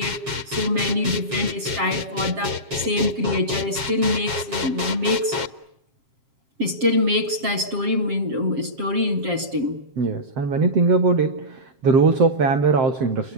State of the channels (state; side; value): late; left; 7.3 ms